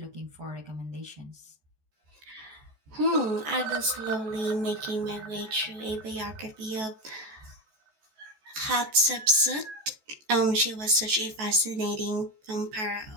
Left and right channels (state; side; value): late; left; 14 ms